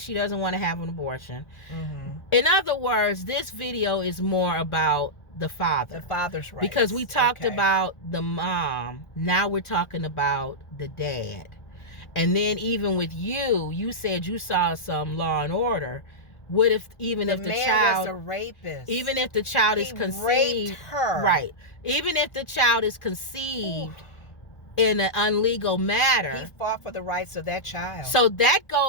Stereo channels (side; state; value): right; late; 1.4 ms